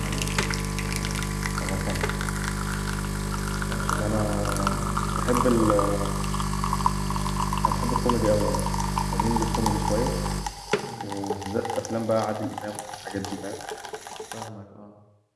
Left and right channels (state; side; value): identical; both; correlation 1.00